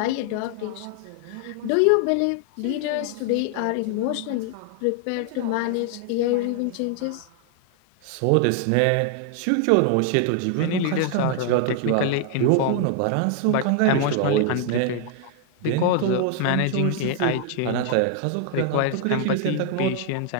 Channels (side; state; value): both; different; correlation 0.00